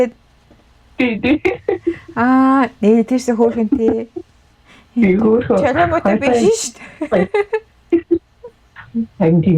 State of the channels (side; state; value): both; identical; correlation 1.00